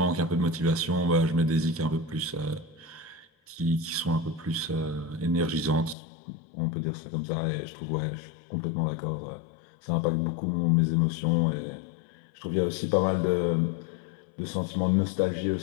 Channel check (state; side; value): drops out; right; at 6.0 s